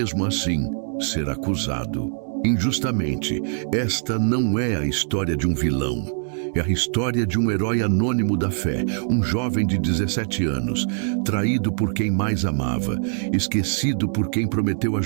assim ser acusado injustamente. Esta não é a história de um vilão. É a história de um herói anônimo da fé, um jovem de 17 anos, traído por quem mais amava, esquecido por quem prometeu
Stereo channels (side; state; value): left; silent; digital silence